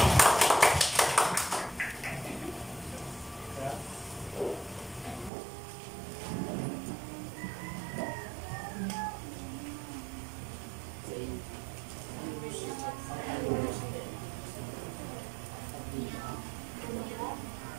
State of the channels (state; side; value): drops out; left; at 5.3 s